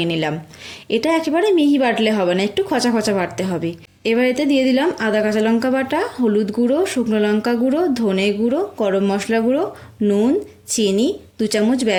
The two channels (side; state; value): both; identical; correlation 1.00